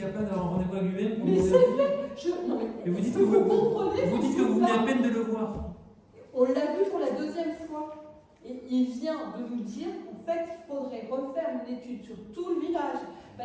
d'avoir un rendez-vous à l'UM? Mais c'est fait. Et vous dites que vous venez à peine de le voir. On l'a vu pour la deuxième fois. Et il vient de nous dire qu'en fait, il faudrait refaire une étude sur tout le village.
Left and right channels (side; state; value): both; identical; correlation 1.00